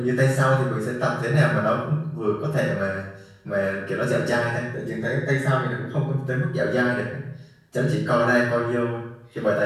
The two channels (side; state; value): both; identical; correlation 1.00